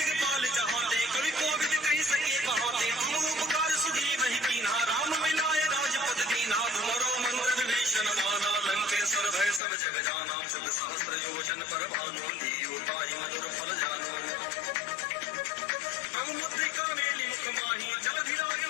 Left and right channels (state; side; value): drops out; right; at 9.6 s